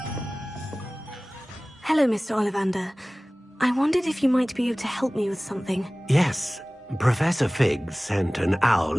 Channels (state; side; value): normal; both; correlation 0.98